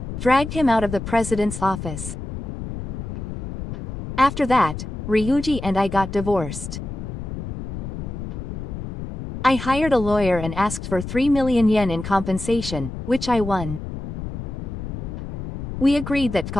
Dragged him out of the president's office. After that, Ryuji and I got divorced. I hired a lawyer and asked for 3 million yen in compensation, which I won. We agreed that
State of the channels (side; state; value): left; noise; rumble, 7 dB below the sound